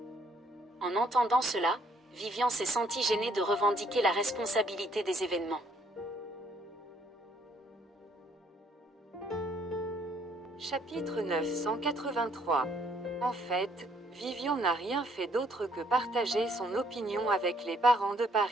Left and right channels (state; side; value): normal; both; correlation 0.66